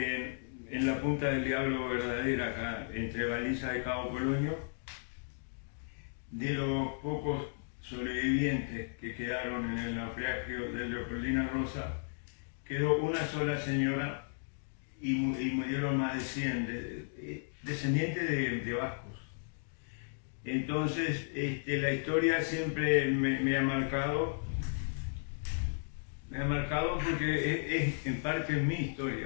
la Punta del Diablo verdadera, acá entre Baliza y Cabo Polonio. De los pocos sobrevivientes que quedaron en el naufragio de Leopoldina Rosa, quedó una sola señora y murieron más de 100 descendientes de vascos. Entonces, la historia siempre me ha marcado porque es en parte mi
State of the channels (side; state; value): right; silent; digital silence